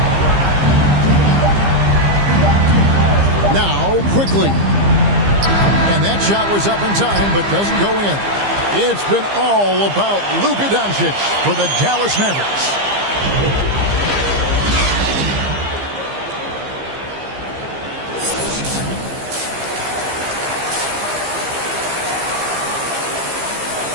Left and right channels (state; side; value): late; left; 15 ms